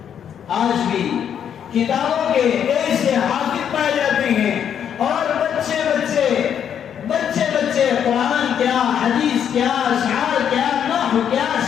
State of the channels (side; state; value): right; quieter; 8.7 dB